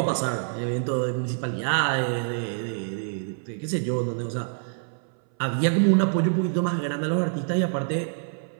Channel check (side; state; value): left; silent; 61 dB below the other